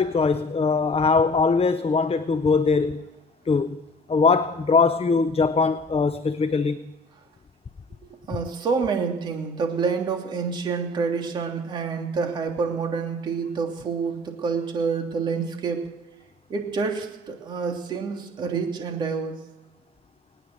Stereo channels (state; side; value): normal; both; correlation 0.47